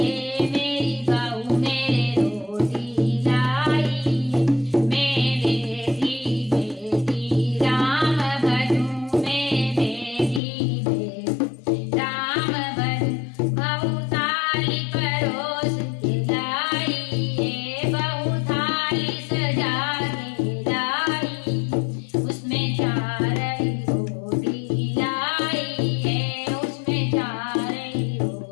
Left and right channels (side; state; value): right; drops out; at 10.4 s